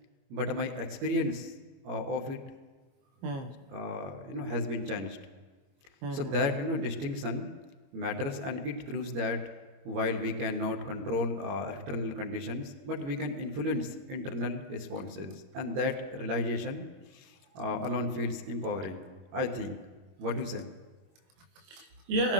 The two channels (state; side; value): late; left; 22 ms